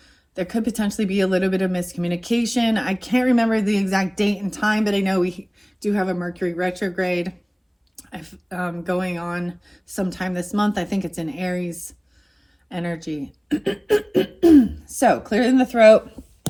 could potentially be a little bit of miscommunication. I can't remember the exact date and time, but I know we do have a Mercury retrograde going on sometime this month. I think it's in Aries energy. So, clearing the throat.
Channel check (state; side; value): identical; both; correlation 1.00